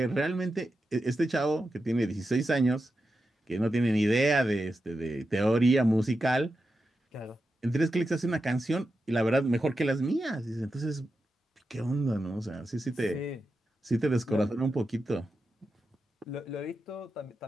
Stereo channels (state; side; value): normal; both; correlation 0.89